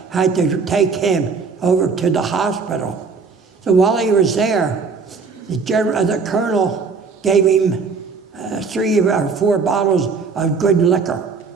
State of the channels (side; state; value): left; quieter; 5.0 dB